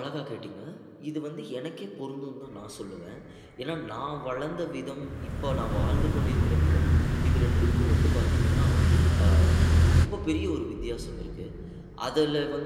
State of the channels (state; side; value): identical; both; correlation 1.00